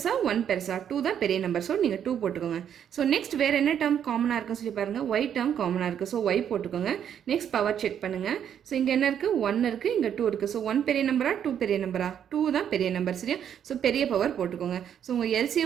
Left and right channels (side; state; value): left; quieter; 9.0 dB